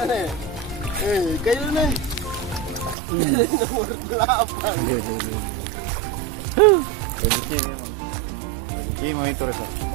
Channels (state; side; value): drops out; left; at 3.0 s